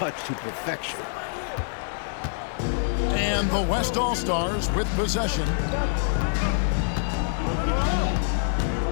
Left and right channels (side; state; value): right; silent; digital silence